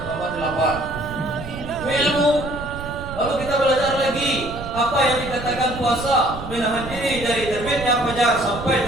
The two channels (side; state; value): right; noise; rumble, 11 dB below the sound